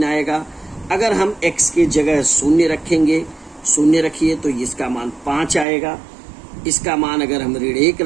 आएगा। अगर हम x के जगह 0 रखेंगे, 0 रखिए तो इसका मान 5 आएगा। इसका मान अगर हम ऋण 1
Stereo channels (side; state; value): left; drops out; at 5.7 s